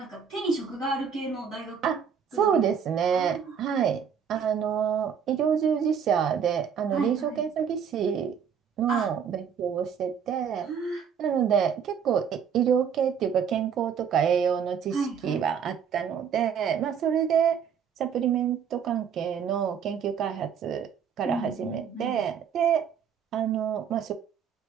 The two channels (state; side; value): quieter; left; 7.4 dB